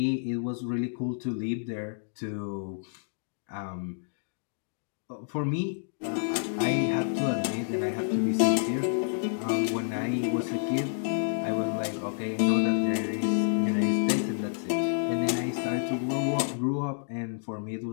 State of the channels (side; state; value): right; silent; digital silence